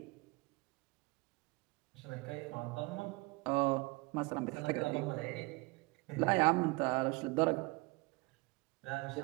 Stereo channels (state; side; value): quieter; left; 25.8 dB